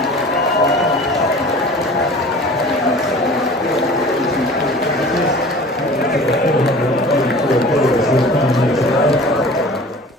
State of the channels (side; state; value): both; normal; correlation 0.42